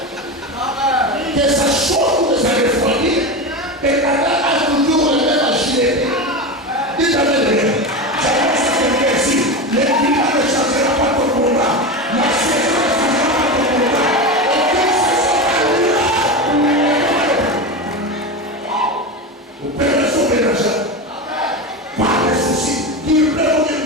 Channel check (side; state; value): both; normal; correlation 0.21